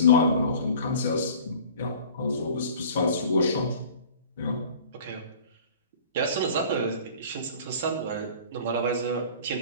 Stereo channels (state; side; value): inverted; both; correlation -0.45